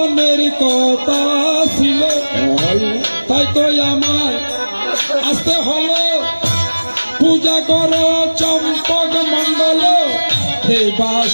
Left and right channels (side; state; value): both; inverted; correlation -1.00